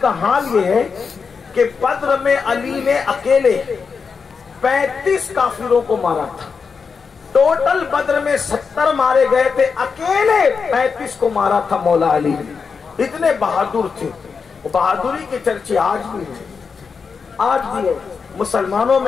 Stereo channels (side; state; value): right; quieter; 5.5 dB